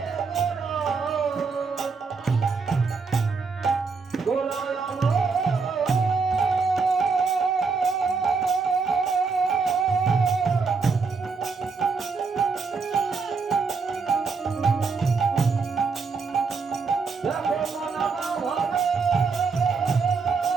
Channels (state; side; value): quieter; left; 4.8 dB